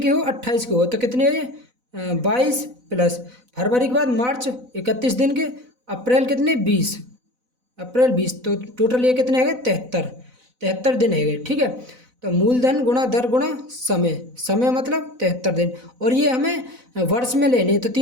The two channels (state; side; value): late; left; 4.0 ms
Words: हो? 28 की हो, तो कितने 22 प्लस फरवरी के बाद मार्च 31 दिन के, अप्रैल कितने 20, अप्रैल 20, तो टोटल ये कितने है? 73 दिन है। ठीक है, तो मूलधन गुणा दर गुणा समय मतलब 73 दिन। और ये हमें वर्ष में लेने, तो